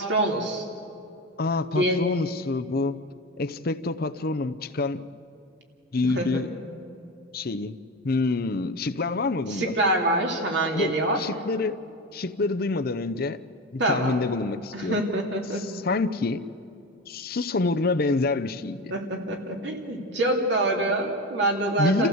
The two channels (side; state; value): both; normal; correlation 0.24